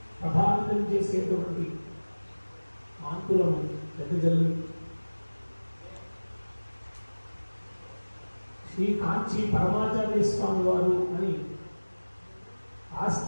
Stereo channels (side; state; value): both; inverted; correlation -1.00